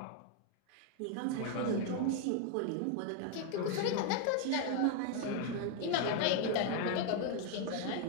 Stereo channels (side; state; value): both; different; correlation 0.01